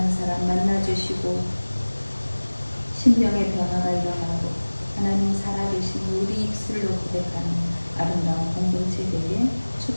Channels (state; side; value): inverted; both; correlation -1.00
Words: 사람 만나주시고 심령의 변화가 일어나고 하나님 살아계신 우리 입술로 고백하는 아름다운 공동체 되게